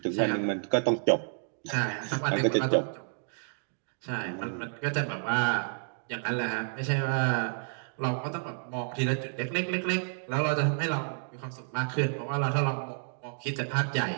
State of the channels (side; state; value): left; silent; digital silence